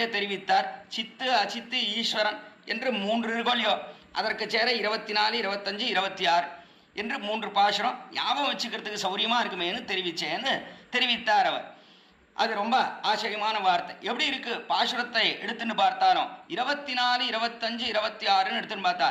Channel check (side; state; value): both; identical; correlation 1.00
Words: தெரிவித்தார். சித்து அச்சித்து ஈஸ்வரன் என்று 3 இருக்கோலையோ, அதற்கு சேர 24, 25, 26 என்று 3 பாசுரம் ஞாபகம் வச்சுக்கிறதுக்கு சௌரியமா இருக்குமேன்னு தெரிவித்தார் அவர். அது ரொம்ப ஆச்சரியமான வார்த்தை. எப்படி இருக்கு பாசுரத்தை எடுத்துன்னு பார்த்தாலும் 24, 25, 26 எடுத்துன்னு பார்த்தா